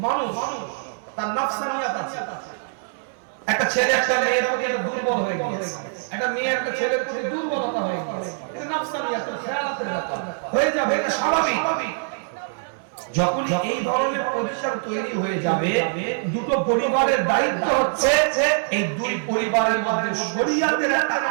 মানুষ তার নফসানিয়াত আছে। একটা ছেলে একটা মেয়ের প্রতি একটা দুর্বল হয়ে গেছে, একটা মেয়ে একটা ছেলের প্রতি দুর্বলতা হয়ে গেছে, এটা নফসানিয়াতের খেয়ালাতের ব্যাপার হয়ে যাবে, এটা স্বাভাবিক। যখন এই ধরনের পজিশন তৈরি হয়ে যাবে, দুটো পরিবারের দায়িত্ব হচ্ছে এই দুই পরিবারের মধ্যে শরীয়তের একটা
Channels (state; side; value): silent; left; 61 dB below the other